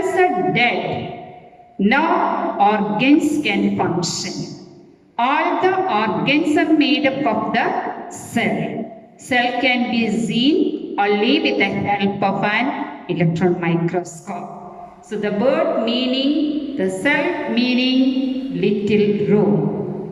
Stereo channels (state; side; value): identical; both; correlation 1.00